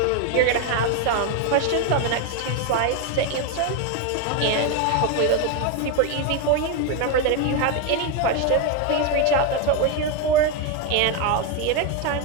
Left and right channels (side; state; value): both; different; correlation 0.02